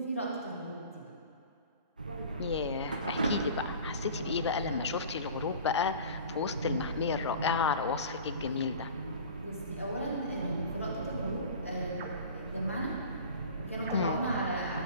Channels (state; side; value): inverted; both; correlation -0.41